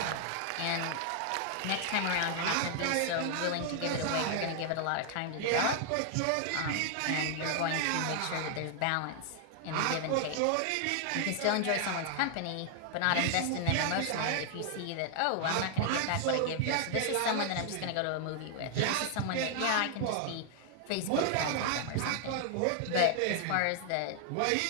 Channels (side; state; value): both; different; correlation 0.00